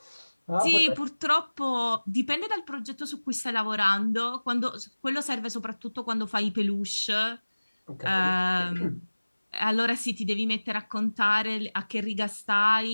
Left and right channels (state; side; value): inverted; both; correlation -1.00